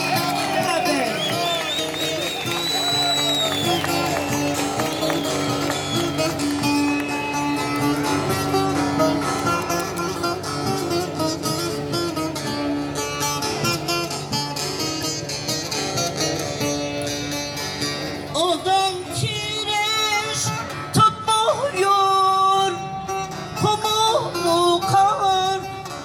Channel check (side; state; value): both; identical; correlation 1.00